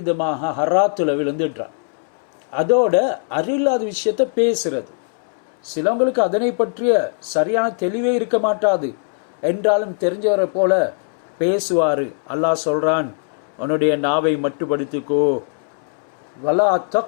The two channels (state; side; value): silent; right; 64 dB below the other